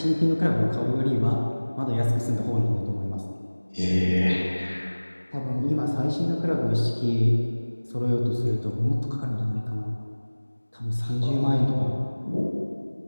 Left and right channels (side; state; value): both; inverted; correlation -1.00